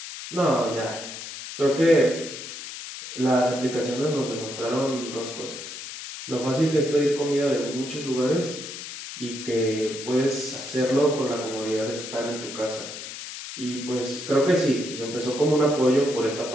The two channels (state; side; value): noise; left; hiss, 10 dB below the sound